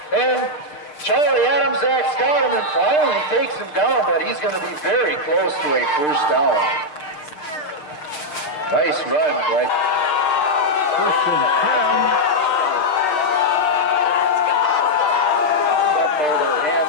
and Charlie Adams acts got him and finally takes him down, but he's going to be very close to a first down. Nice run, right? First and 10. Zudmaldo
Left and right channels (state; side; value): late; right; 6.6 ms